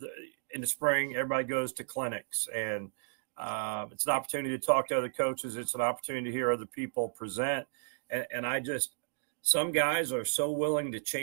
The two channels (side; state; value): left; silent; digital silence